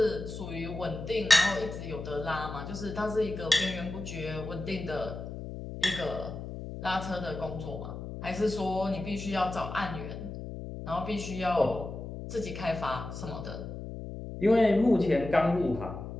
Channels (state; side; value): noise; left; hum, 8 dB below the sound